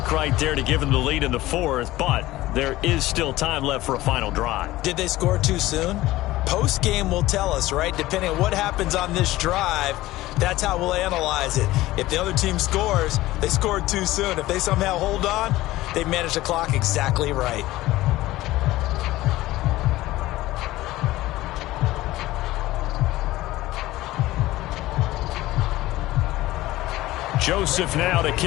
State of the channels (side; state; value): right; quieter; 17.0 dB